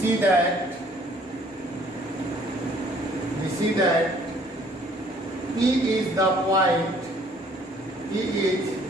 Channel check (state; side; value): normal; both; correlation 0.59